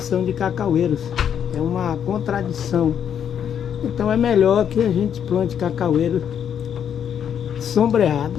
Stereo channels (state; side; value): quieter; right; 8.7 dB